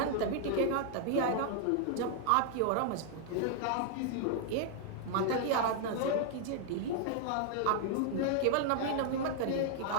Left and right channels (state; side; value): different; both; correlation 0.00